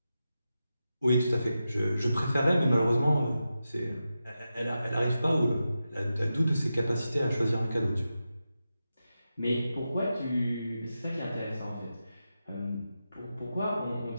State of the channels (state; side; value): inverted; both; correlation -0.90